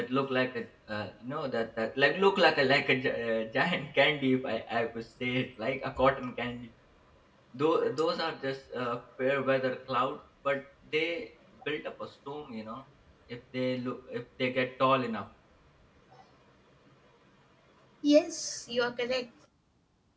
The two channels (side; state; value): both; identical; correlation 1.00